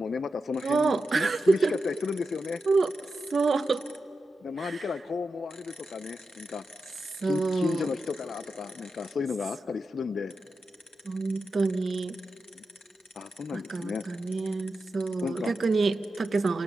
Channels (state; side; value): normal; both; correlation 0.90